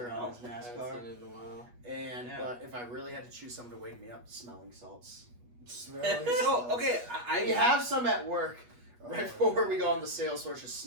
Yeah, on his I haven't NASCAR. seen it in a while. And Yeah. but if I really had to choose something to wake me up, smelling salts. Smelling So salts. okay, I We have some at work Oh, right before we go on the sales floor. Just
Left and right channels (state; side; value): late; left; 8.3 ms